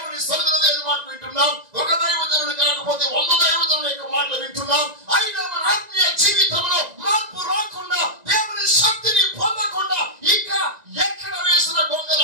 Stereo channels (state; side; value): late; left; 1.9 ms